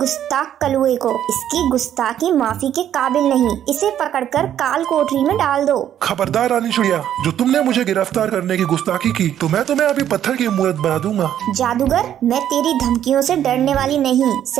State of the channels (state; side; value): quieter; left; 10.5 dB